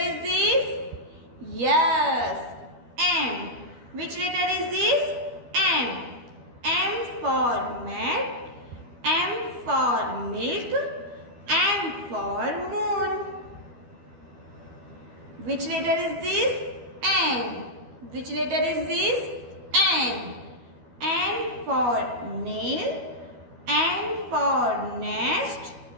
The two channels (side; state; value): left; late; 12 ms